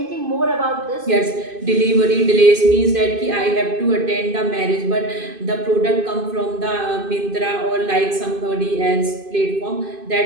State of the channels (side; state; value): left; late; 2.5 ms